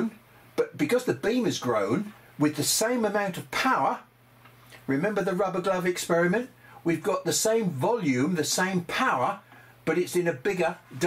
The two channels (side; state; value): both; identical; correlation 1.00